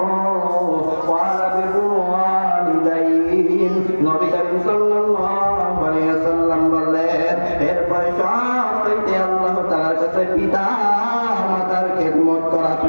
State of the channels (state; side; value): inverted; both; correlation -1.00